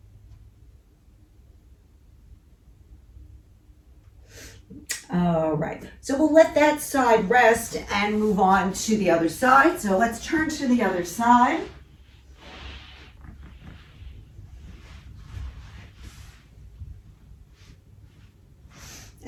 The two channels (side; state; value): both; identical; correlation 1.00